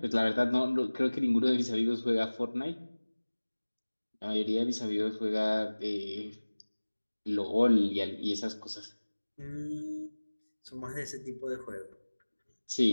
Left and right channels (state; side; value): inverted; both; correlation -1.00